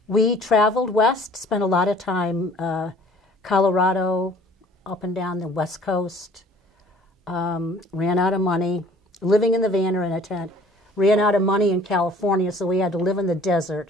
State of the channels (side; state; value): both; normal; correlation 0.53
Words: We traveled west, spent a lot of time Colorado, up and down the West Coast, ran out of money, living in the van or in a tent, ran out of money in California, so we had to live in the desert,